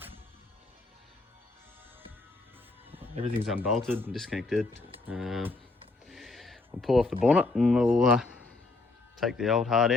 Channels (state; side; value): quieter; right; 3.4 dB